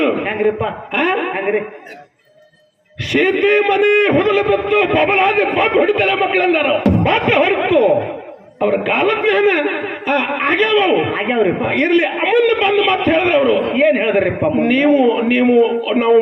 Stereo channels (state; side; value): identical; both; correlation 1.00